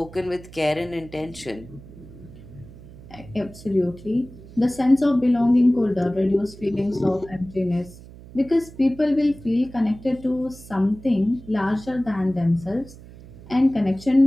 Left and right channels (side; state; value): right; noise; hum, 18 dB below the sound